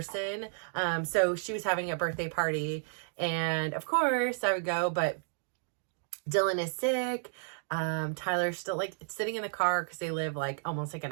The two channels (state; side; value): silent; left; digital silence